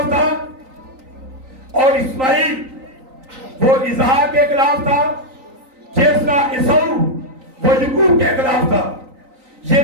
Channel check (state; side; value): late; left; 3.9 ms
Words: था और इस्माइल वो इसहाक के खिलाफ था, जिस तरह इसऊ वो याकूब के खिलाफ था। ये